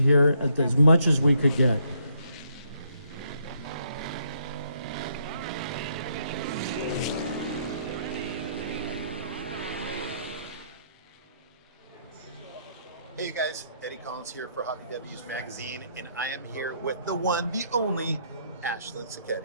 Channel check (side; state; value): both; inverted; correlation -0.71